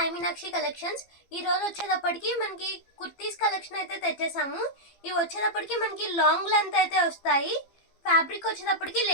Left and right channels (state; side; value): late; right; 15 ms